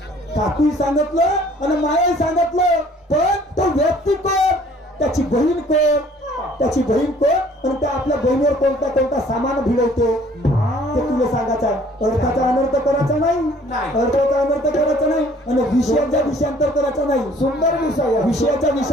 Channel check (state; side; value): normal; both; correlation 0.56